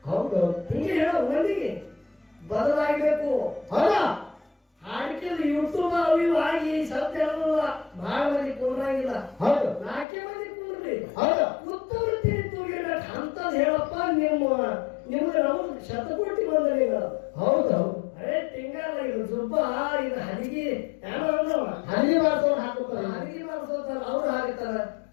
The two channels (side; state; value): right; drops out; at 10.1 s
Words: ಹೌದು ಹಿಂಗೆ ಹೇಳೋ ಮಂದಿಗೆ ಬದಲಾಗಬೇಕು. ಹೌದಾ ಹಾಡಿಕೆದು ಯೂಟ್ಯೂಬ್ ಅವು ಇವು ಆಗಿ ಸತ್ಯ ಹೇಳೋದಿಲ್ಲ. ಬಹಳ ಮಂದಿ ಕುಂದ್ರಾಗಿಲ್ಲ. ಹೌದು 4 ಮಂದಿ ಕುಂದ್ರಿ ಹೌದು ಉತ್ತಮ ತೂಗಿರ್ಬೇಕು ಅಂತದ್ ಹೇಳಪ್ಪ. ನಿಮ್ಗೆ ನಾವು ಶತಕೋಟಿ ಬಂದಲಿಲ್ಲ. ಹೌದು ಹೌದು ಅರೇ ತಿಂಗಳ ಇದು ಜುಬ್ಬ ಇದು ಹದಿಗೆ ಏನೋ ಅಂದವ ಹಳ್ಳಿ ಮಾಡ್ಸೋರು ಹಾಕುತ್ತಾರೆ ಹದಿಗೆ ಮಾಡಿಸೋತಾರ ಅವ್ರು ಹಾಕ್ತಾರ.